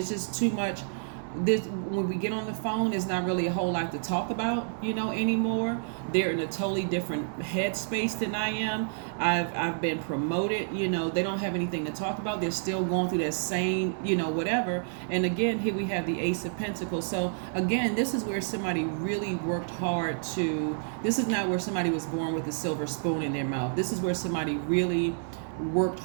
just too much. When we get on the phone, there's not really a whole lot to talk about, anymore. They're in a totally different headspace than I am. I've been promoted, they don't have anything to talk about. They're still going through that same, whatever. And again, here we have the Ace of Pentacles. So again, this is where somebody really worked hard this is not where somebody was born with a silver spoon in their mouth. This is where somebody really worked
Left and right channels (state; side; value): silent; left; digital silence